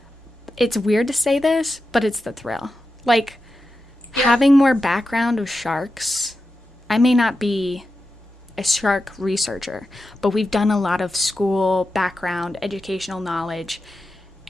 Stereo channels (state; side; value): normal; both; correlation 0.90